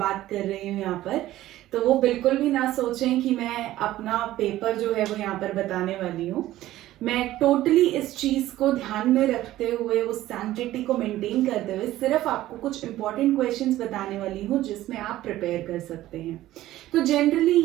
कर रही हूँ यहाँ पर, तो वो बिल्कुल भी ना सोचें कि मैं अपना पेपर जो है वो यहाँ पर बताने वाली हूँ। मैं टोटली इस चीज को ध्यान में रखते हुए, उस सैंक्टिटी को मेंटेन करते हुए सिर्फ आपको कुछ इंपॉर्टेंट क्वेश्चंस बताने वाली हूँ जिसमें आप प्रिपेयर कर सकते हैं। तो जनरली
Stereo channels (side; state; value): left; quieter; 14.9 dB